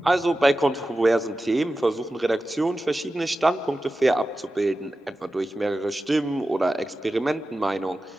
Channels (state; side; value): normal; both; correlation 0.94